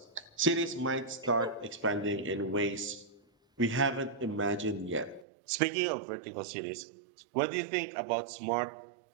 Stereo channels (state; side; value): drops out; left; at 5.2 s